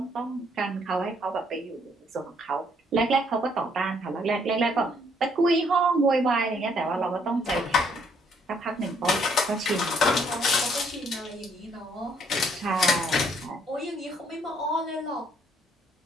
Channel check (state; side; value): normal; both; correlation 0.67